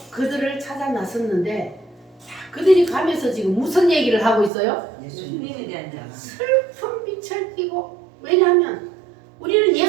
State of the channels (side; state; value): left; drops out; at 4.5 s